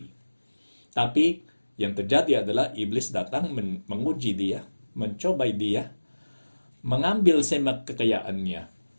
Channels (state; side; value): inverted; both; correlation -1.00